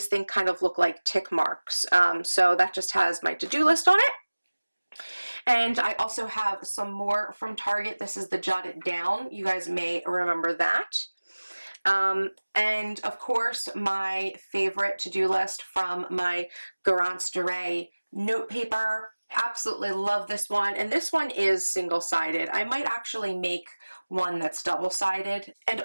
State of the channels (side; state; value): both; inverted; correlation -1.00